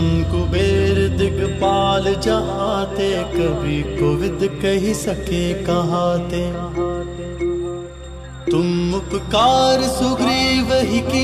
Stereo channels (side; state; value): both; identical; correlation 1.00